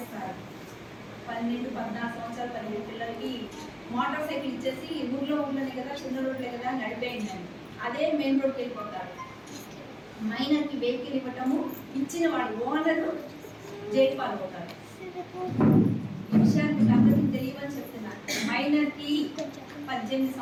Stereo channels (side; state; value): both; identical; correlation 1.00